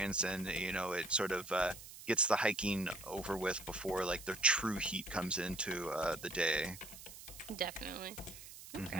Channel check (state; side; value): noise; right; hiss, 14 dB below the sound